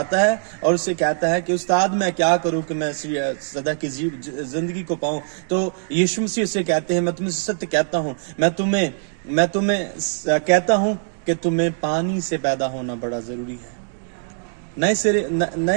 है और उससे कहता है कि उस्ताद मैं क्या करूं कि मैं सदा की जिंदगी को पाऊं। तो यीशु मसीह उससे कहते हैं, मैं तुम्हें सत्य कहता हूं, मैं तुम्हें कहता हूं कि तुम्हें पानी से पैदा होना बड़ा जरूरी है,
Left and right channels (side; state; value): left; silent; digital silence